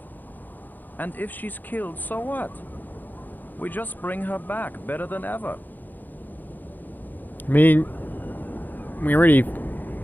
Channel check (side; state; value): right; late; 0.086 ms